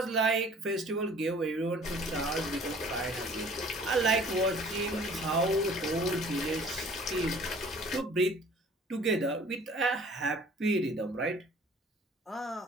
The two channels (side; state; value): both; normal; correlation 0.51